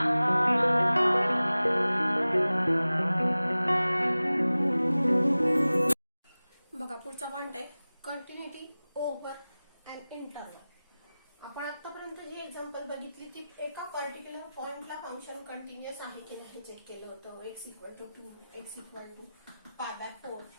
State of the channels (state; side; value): inverted; both; correlation -0.97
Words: पुढचा पॉइंट आहे कंटिन्युटी ओव्हर अँड इंटरवल. आपण आतापर्यंत जी एक्झाम्पल बघितली ती एका पर्टिक्युलर पॉइंटला फंक्शन कंटिन्युअस आहे की नाही चेक केलं होतं. x = 2, x = π/4.